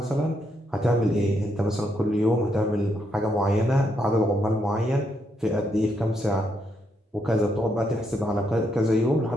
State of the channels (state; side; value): normal; both; correlation 0.77